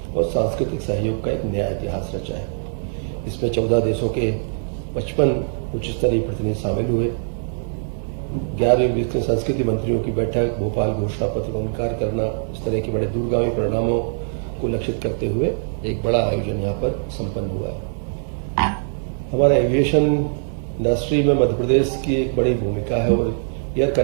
और सांस्कृतिक सहयोग का एक नया इतिहास रचा है। इसमें 14 देशों के 55 उच्च स्तरीय प्रतिनिधि शामिल हुए। 11वीं ब्रिक्स संस्कृति मंत्रियों की बैठक, भोपाल घोषणा पत्र का अंगीकार करना, इस तरह के बड़े दूरगामी परिणामों को लक्षित करते हुए एक बड़ा आयोजन यहाँ पर संपन्न हुआ है। हमारा एविएशन इंडस्ट्री में मध्य प्रदेश की एक बड़ी भूमिका है और एयर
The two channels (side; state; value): left; silent; digital silence